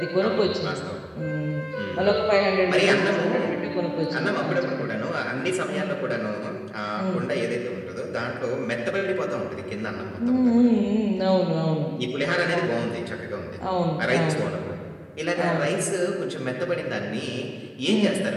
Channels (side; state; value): both; identical; correlation 1.00